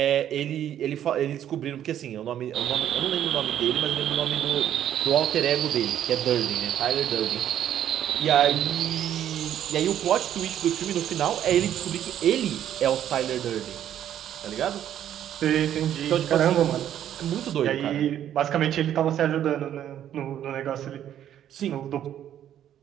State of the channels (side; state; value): left; quieter; 10.7 dB